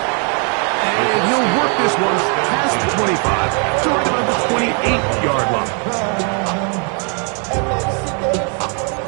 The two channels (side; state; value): left; quieter; 38.6 dB